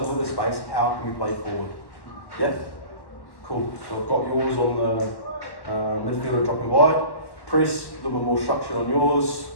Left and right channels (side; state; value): right; late; 1.1 ms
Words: with the space, how can we play forward? Yeah? Cool. So I've got yours on the midfielder dropping wide. Press, a little bit more structure on yours.